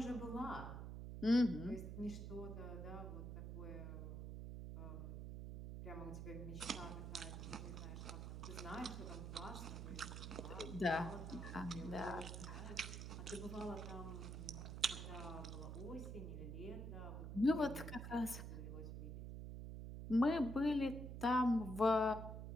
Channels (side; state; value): right; noise; hum, 6 dB below the sound